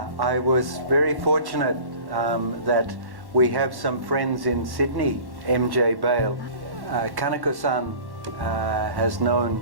was very fortunate that we have some friends in Sydney, MJ Bale. Kaneko-san has known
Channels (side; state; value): left; late; 1.1 ms